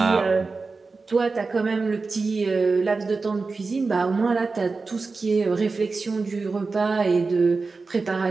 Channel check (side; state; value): left; quieter; 4.1 dB